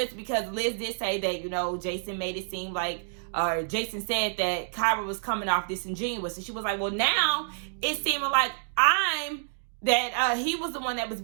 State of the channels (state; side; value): silent; left; digital silence